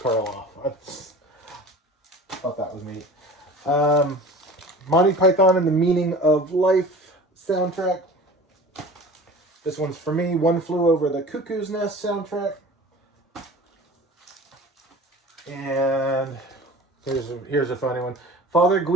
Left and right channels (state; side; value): normal; both; correlation 0.40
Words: I thought that was neat. Monty Python and the Meaning of Life soundtrack. This one's for me. One Flew Over the Cuckoo's Nest soundtrack. And here's a funny one. Father